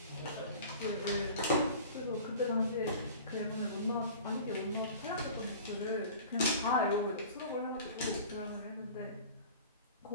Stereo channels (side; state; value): both; inverted; correlation -0.41